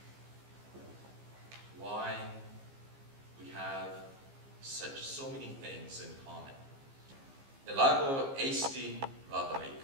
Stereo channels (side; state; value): left; late; 15 ms